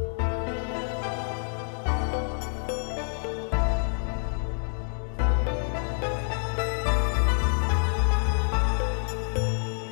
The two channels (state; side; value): silent; right; 60 dB below the other